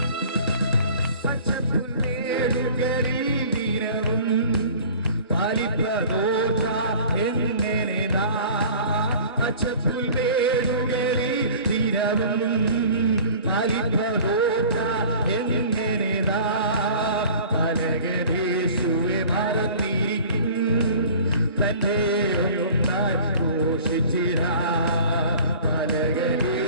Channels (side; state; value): both; inverted; correlation -0.45